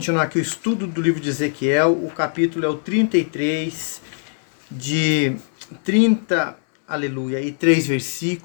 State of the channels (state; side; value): silent; right; digital silence